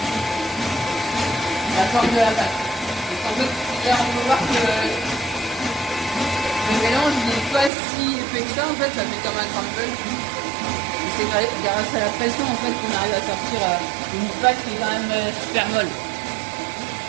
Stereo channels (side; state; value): left; drops out; at 7.7 s